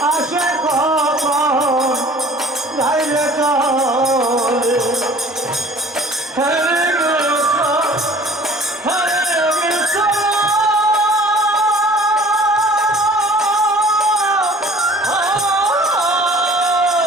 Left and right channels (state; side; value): normal; both; correlation 0.49